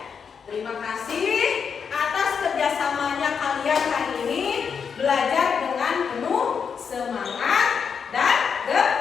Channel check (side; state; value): right; quieter; 6.5 dB